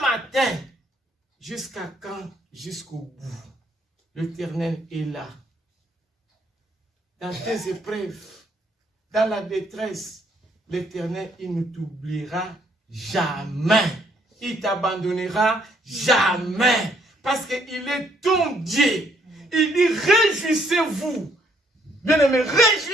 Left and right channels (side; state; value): both; normal; correlation 0.68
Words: matin, jusqu'à quand? Jusqu'au bout. L'Éternel est là. Dans tes épreuves, dans la détresse, l'Éternel, il ne t'oubliera jamais. Il t'abandonnera jamais. Parce qu'il est ton Dieu. Il dit, réjouissez-vous. Bien-aimés,